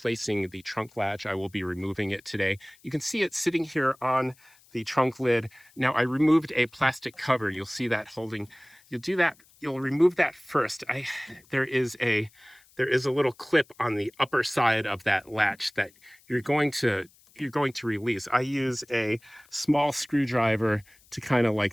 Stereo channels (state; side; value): noise; left; hiss, 29 dB below the sound